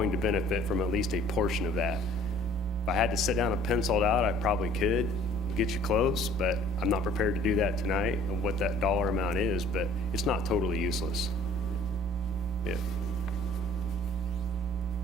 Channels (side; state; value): right; noise; hum, 17 dB below the sound